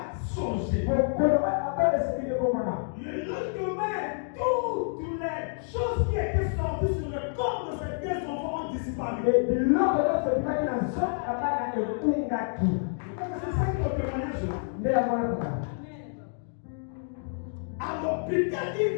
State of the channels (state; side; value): silent; right; digital silence